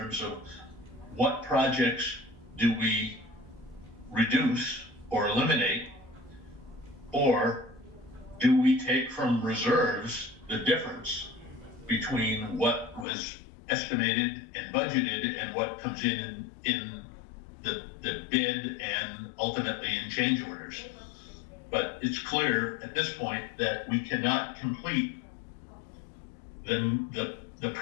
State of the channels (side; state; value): right; drops out; at 13.1 s